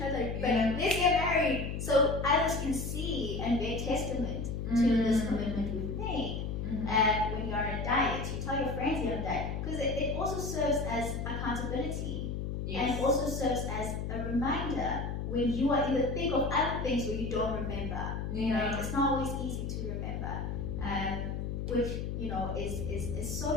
other, but let's get married, so others can see and bear testament to this commitment we've made. When you're on a diet, you tell your friends you're on a diet, because it also serves as accountability, and also serves as a reminder when you are in the thick of other things where you don't remember. Right? It's not always easy to remember, which, you know, is so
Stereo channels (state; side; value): noise; left; hum, 3 dB below the sound